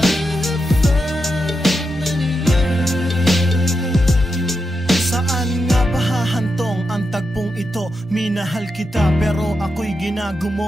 Ito, minahal kita pero ako'y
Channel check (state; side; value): normal; both; correlation 0.86